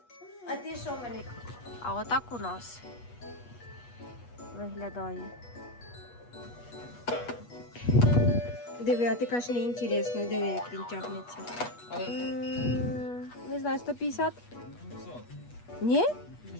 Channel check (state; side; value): late; right; 8.3 ms